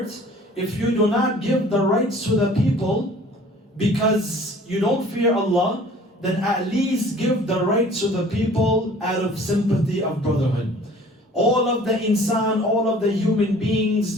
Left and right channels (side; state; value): both; normal; correlation 0.50